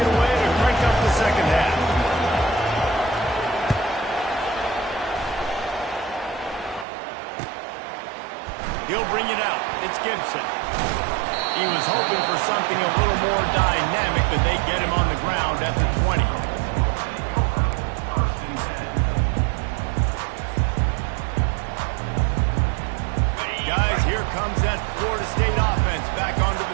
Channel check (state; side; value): drops out; left; at 6.9 s